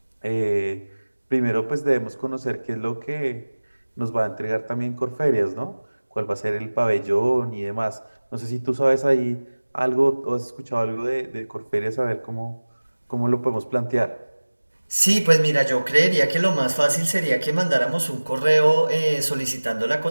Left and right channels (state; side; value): inverted; both; correlation -1.00